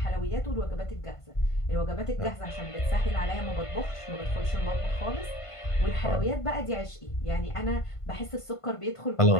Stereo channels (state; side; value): late; right; 1.5 ms